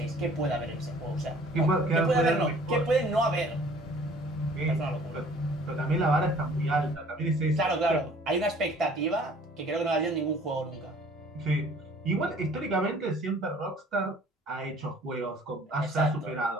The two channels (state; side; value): normal; both; correlation 0.53